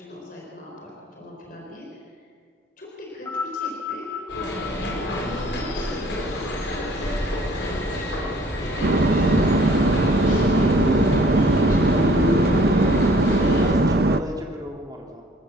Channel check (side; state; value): both; normal; correlation 0.57